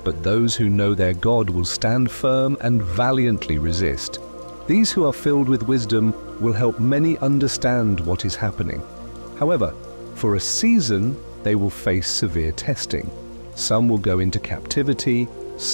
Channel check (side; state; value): both; inverted; correlation -1.00